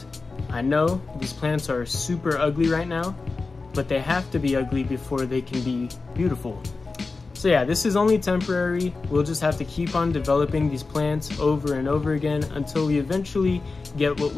I know these plants are super ugly right now, but they have to be ugly before they can be beautiful. So yeah, this is only temporary. We'll just have to keep on developing these plants over and over again until we eventually get what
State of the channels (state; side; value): quieter; right; 4.0 dB